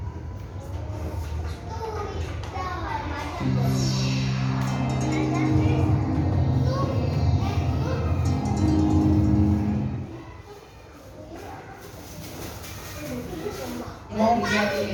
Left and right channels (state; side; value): identical; both; correlation 1.00